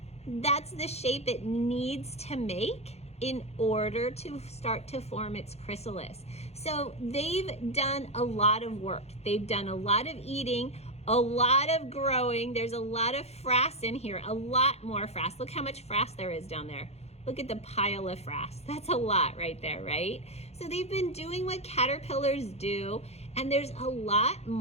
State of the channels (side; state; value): right; late; 0.31 ms